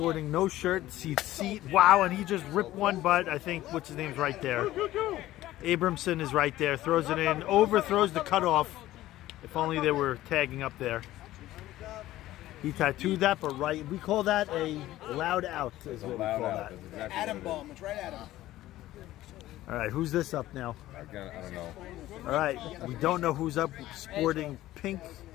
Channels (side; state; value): right; quieter; 15.3 dB